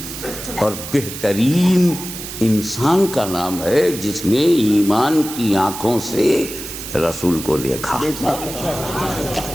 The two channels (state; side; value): noise; right; hiss, 9 dB below the sound